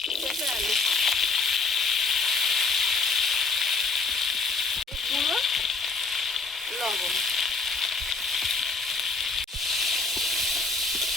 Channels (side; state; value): right; quieter; 4.4 dB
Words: পেঁপে আলু, গুঁড়ো, লবণ।